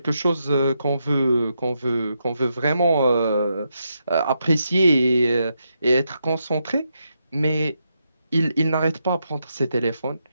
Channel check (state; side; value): inverted; both; correlation -0.83